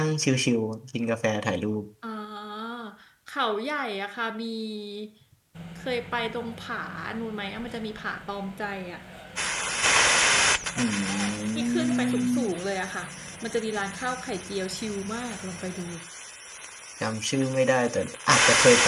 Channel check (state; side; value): identical; both; correlation 1.00